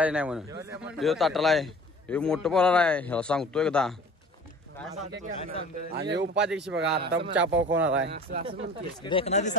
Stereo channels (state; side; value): normal; both; correlation 0.44